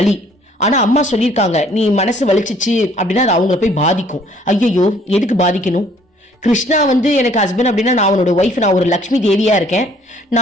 ஆனா அம்மா சொல்லியிருக்காங்க, நீ மனசு வலிச்சிச்சு அப்படின்னா அது அவங்கள போய் பாதிக்கும். ஐயோ, எதுக்கு பாதிக்கணும்? கிருஷ்ணா எனக்கு ஹஸ்பண்ட் அப்படின்னா நான் அவனோட ஒய்ஃப், நான் ஒரு லக்ஷ்மி தேவியா இருக்கேன்.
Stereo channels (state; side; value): normal; both; correlation 0.60